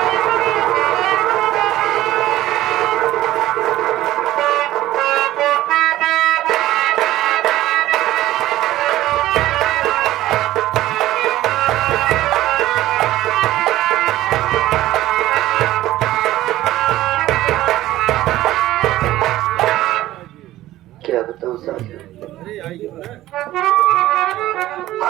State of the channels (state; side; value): quieter; left; 15.2 dB